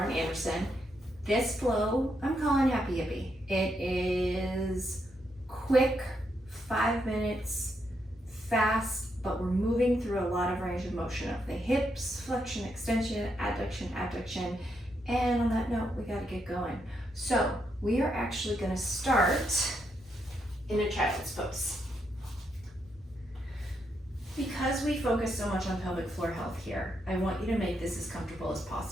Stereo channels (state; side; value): normal; both; correlation 0.80